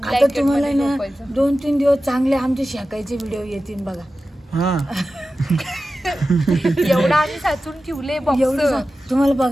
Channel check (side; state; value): both; normal; correlation 0.94